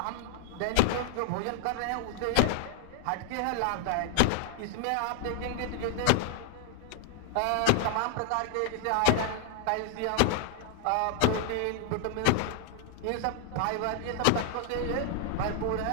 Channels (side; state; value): both; different; correlation 0.00